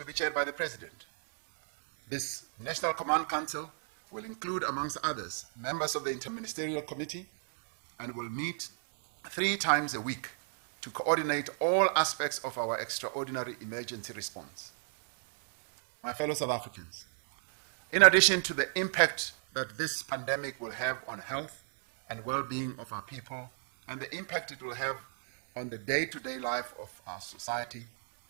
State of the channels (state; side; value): silent; left; 56 dB below the other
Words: be chaired by the President. This National Command Council will include, amongst others, members of the Interministerial Committee and will meet 3 times a week to coordinate all aspects of our extraordinary emergency response. My fellow South Africans, in addition to the impact that this pandemic will have on health and well-being of our people and the impact it will have on the day-to-day life of our society,